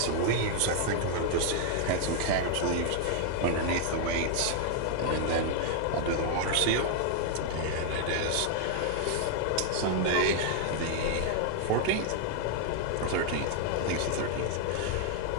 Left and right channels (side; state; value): both; different; correlation 0.00